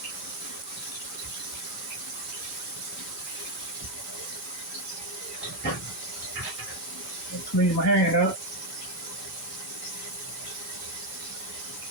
Clean my hand up.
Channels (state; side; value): normal; both; correlation 0.04